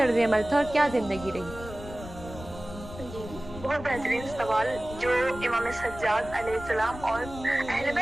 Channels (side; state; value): left; noise; rumble, 13 dB below the sound